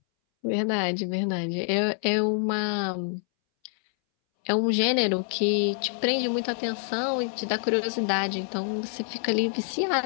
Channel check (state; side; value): silent; right; 61 dB below the other